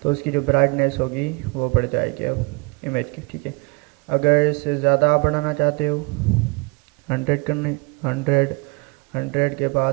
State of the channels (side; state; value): left; quieter; 29.8 dB